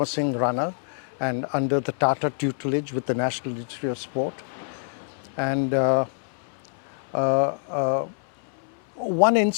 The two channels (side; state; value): right; silent; 61 dB below the other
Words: runner and under the Tata tutelage with the National Institute of Sport. And one